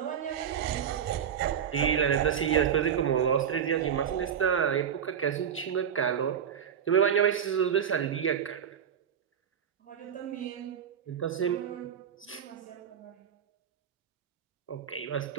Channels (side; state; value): left; quieter; 8.3 dB